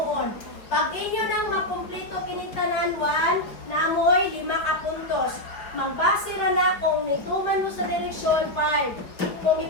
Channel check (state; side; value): late; right; 4.8 ms